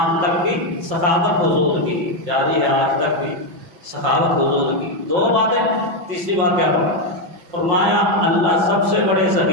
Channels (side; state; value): left; late; 5.6 ms